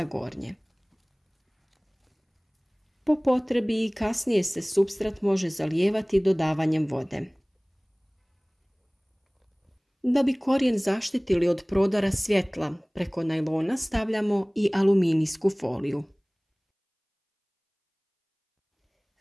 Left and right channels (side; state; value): both; identical; correlation 1.00